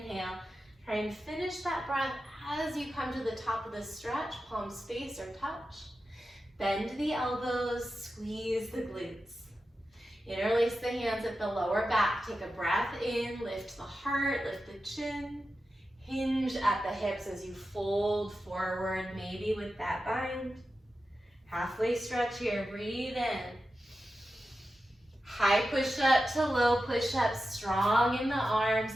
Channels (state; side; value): normal; both; correlation 0.92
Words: Try and finish that breath as you come to the top of the stretch, palms face or touch. Bend the elbows, squeeze the glutes. Interlace the hands at the lower back. Take a breath in, lift the heart, lift the chin. Hinge at the hips as you fold forward, maybe with that bind. Halfway stretch here, breathe in. High push up to low push up, strong in the arms